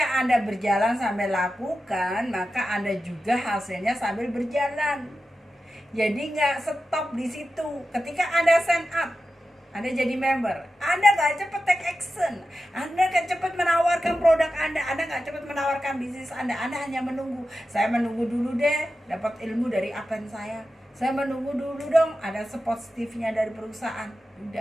Anda berjalan sambil lakukan, maka Anda juga hasilnya sambil berjalan. Jadi nggak stop di situ. Ketika Anda sign up, Anda jadi member, Anda nggak cepat take action, Anda nggak cepat menawarkan produk Anda nggak cepat menawarkan bisnis Anda hanya menunggu. Saya menunggu dulu deh, dapat ilmu dari upline saya menunggu dulu dong, ada positifnya dari perusahaan.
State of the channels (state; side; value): normal; both; correlation 0.92